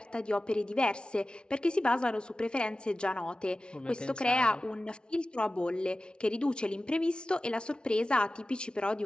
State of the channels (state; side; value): late; right; 0.056 ms